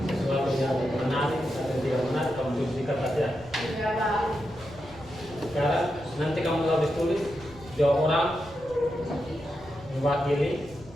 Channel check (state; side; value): noise; left; rumble, 21 dB below the sound